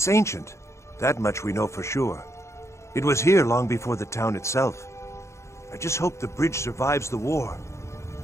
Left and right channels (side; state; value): right; late; 0.14 ms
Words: ancient. That much we know for sure. It was here long before the town itself. I just hope the bridge survives the war.